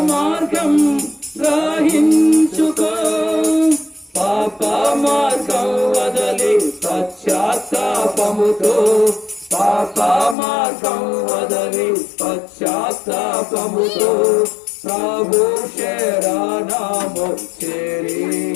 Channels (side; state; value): right; drops out; at 10.4 s